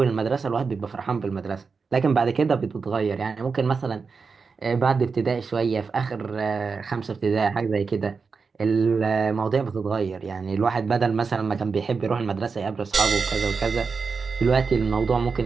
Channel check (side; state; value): left; quieter; 5.0 dB